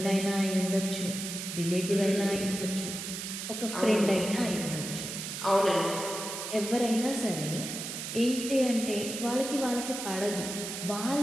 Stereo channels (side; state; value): right; noise; hiss, 6 dB below the sound